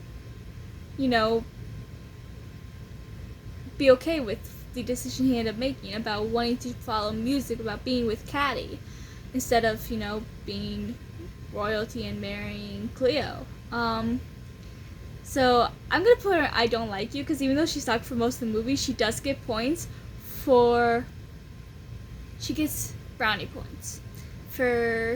you know, be okay with the decision he ended up making about wanting to follow music, about being with Caddy, instead of, you know, being royalty and marrying Cleo. So I'm gonna put her I Don't Like You, because even though she sucked for most of the movie, she does get points for, she gets brownie points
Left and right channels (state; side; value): identical; both; correlation 1.00